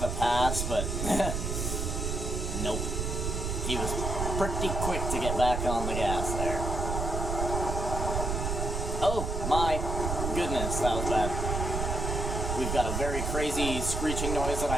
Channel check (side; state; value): right; noise; rumble, 2 dB below the sound